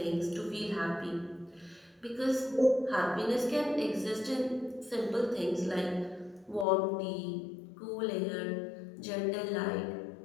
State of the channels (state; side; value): drops out; right; at 6.7 s